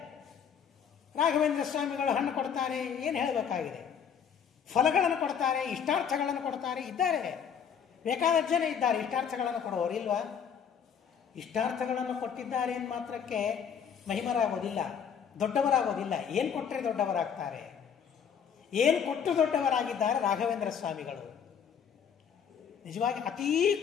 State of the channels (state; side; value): quieter; right; 7.6 dB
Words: ರಾಘವೇಂದ್ರ ಸ್ವಾಮಿಗಳು ಹಣ್ಣು ಕೊಡ್ತಾರೆ, ಏನು ಹೇಳಬೇಕಾಗಿದೆ? ಫಲಗಳನ್ನು ಕೊಡ್ತಾರೆ, ಇಷ್ಟಾರ್ಥಗಳನ್ನು ಕೊಡ್ತಾರೆ, ಇದ್ದಾರೆ. ಬೇಕಾದ ಜನ ಇದ್ದಾರೆ ಇಷ್ಟಾರ್ಥಗಳನ್ನು ಕೊಡುವವರು, ಇಲ್ವಾ? ಇಷ್ಟಾರ್ಥಗಳನ್ನು ಕೊಟ್ಟಿದ್ದಾರೆ ಎಂದು ಮಾತ್ರಕ್ಕೆ ಮಹಿಮರಾಗೋದಿಲ್ಲ, ದೊಡ್ಡವರಾಗೋದಿಲ್ಲ. ಏನು ಕೊಟ್ಟರೆ ದೊಡ್ಡವರಾಗ್ತಾರೆ? ಏನು ಕೊಟ್ಟು ದೊಡ್ಡವರಾಗಿದ್ದಾರೆ ರಾಘವೇಂದ್ರ ಸ್ವಾಮಿಗಳು? ನಿಜವಾಗಿ ಅತೀ